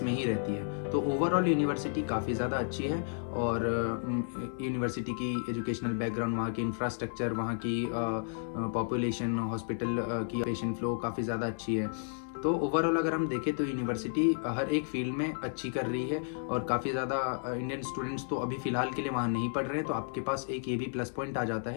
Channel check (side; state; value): right; silent; 56 dB below the other